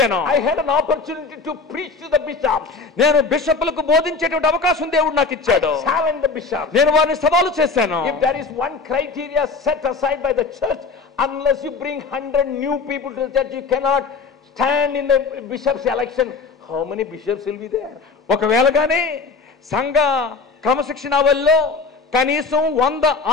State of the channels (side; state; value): right; quieter; 4.5 dB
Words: I had an opportunity to preach to the bishops. నేను బిషప్లకు బోధించేటువంటి అవకాశం దేవుడు నాకు ఇచ్చాడు. I challenged the bishops. నేను వారిని సవాలు చేశాను. If there is one criteria set aside by the church, unless you bring 100 new people to the church, you cannot stand in the bishop's election. How many bishops will be there? ఒకవేళ గానీ సంఘ క్రమశిక్షణావల్లో కనీసం 100